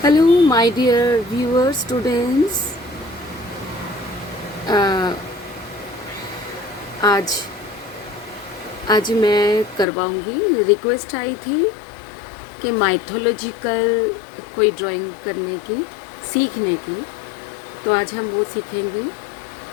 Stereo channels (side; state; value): right; drops out; at 9.9 s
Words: my dear viewers, students. आज आज मैं करवाऊंगी। रिक्वेस्ट आई थी कि माइथोलॉजिकल कोई ड्राइंग करने की, सीखने की, तो आज हम वो सीखेंगे।